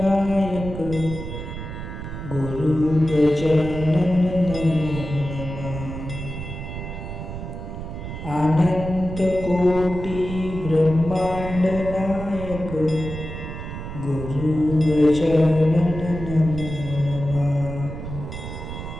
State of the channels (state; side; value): noise; right; rumble, 8 dB below the sound